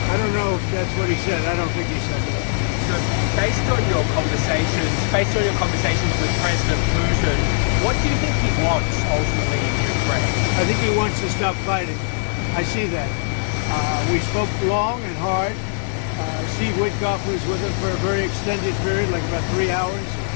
I don't know if that's what he said. I don't think he said that. So based on your conversations with President Putin, what do you think he wants ultimately in Ukraine? I think he wants to stop fighting. I see that. We spoke long and hard. Steve Witkoff was with him for a very extended period, like about 3 hours.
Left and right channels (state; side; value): silent; right; digital silence